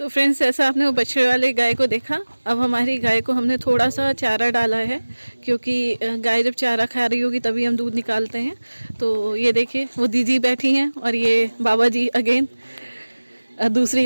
फ्रेंड्स, ऐसा आपने वो बछड़े वाले गाय को देखा। अब हमारी गाय को हमने थोड़ा सा चारा डाला है, क्योंकि गाय जब चारा खा रही होगी तभी हम दूध निकालते हैं। तो ये देखिए वो दीदी बैठी हैं और ये बाबा जी अगेन दूसरी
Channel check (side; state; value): both; inverted; correlation -1.00